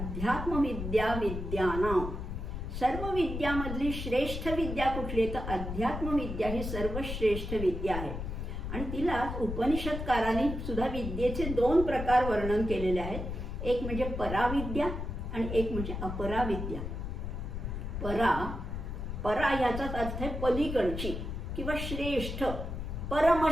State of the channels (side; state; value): left; noise; rumble, 5 dB below the sound